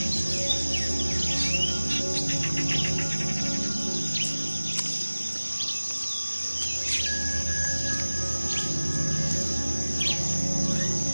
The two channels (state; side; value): inverted; both; correlation -1.00